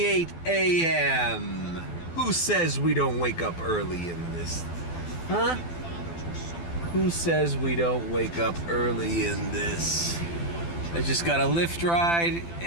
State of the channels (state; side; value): late; right; 12 ms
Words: a.m. Who says we don't wake up early in this? Huh? Who says we don't wake up early in this? I just got a Lyft ride